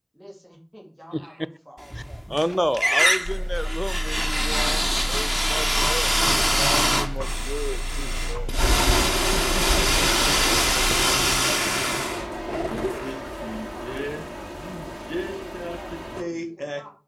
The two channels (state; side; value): identical; both; correlation 1.00